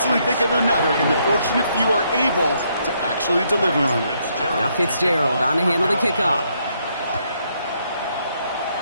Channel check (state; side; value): inverted; both; correlation -0.73